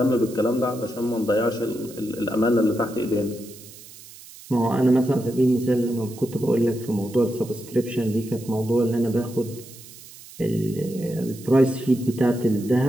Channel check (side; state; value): right; noise; hiss, 19 dB below the sound